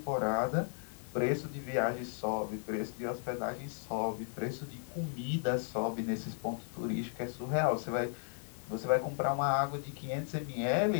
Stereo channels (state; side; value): silent; right; digital silence